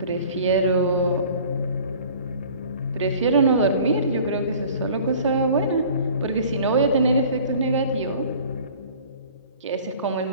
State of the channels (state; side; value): inverted; both; correlation -0.48